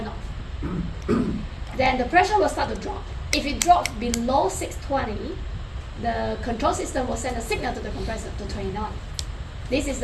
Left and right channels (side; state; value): both; identical; correlation 1.00